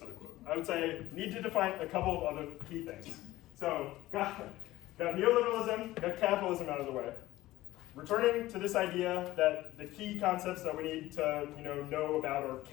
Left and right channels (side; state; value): right; quieter; 16.7 dB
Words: I would say need to define a couple of other key things. So got neoliberalism, got capitalism out of the way. Returning to this idea that the key concepts that we need to know about are